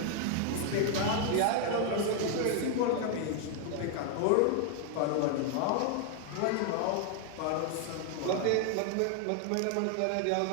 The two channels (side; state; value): both; different; correlation 0.00